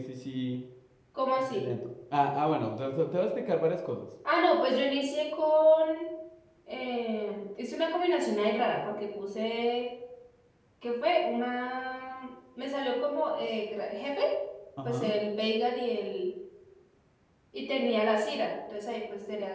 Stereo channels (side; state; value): both; identical; correlation 1.00